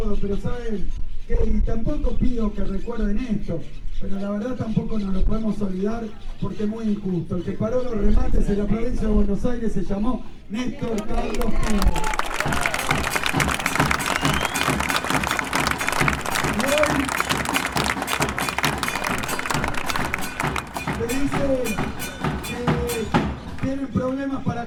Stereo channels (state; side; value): identical; both; correlation 1.00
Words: pero saben que, y tampoco pido que recuerden esto, pero la verdad tampoco nos lo podemos olvidar porque es muy injusto. El que paró los remates en la provincia de Buenos Aires se llamó Néstor Carlos Kirchner. Y hoy se dice que tienen problemas